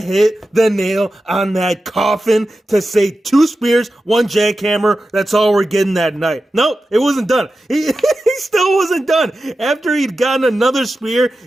hit the nail on that coffin to say 2 spears, 1 jackhammer. That's all we're getting that night. Nope, it wasn't done. He still wasn't done. After he'd gotten another spear,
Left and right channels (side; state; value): both; normal; correlation 0.92